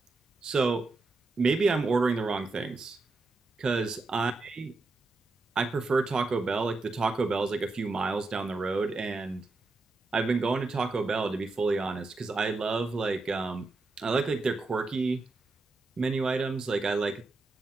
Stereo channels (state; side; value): quieter; left; 3.5 dB